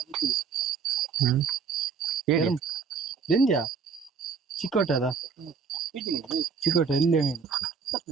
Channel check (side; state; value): left; quieter; 5.7 dB